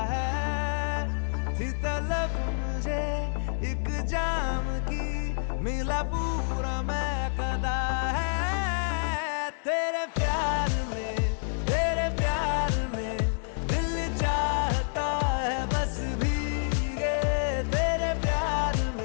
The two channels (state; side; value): silent; right; 59 dB below the other